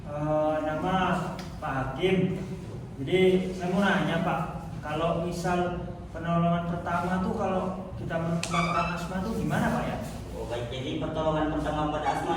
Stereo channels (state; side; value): identical; both; correlation 1.00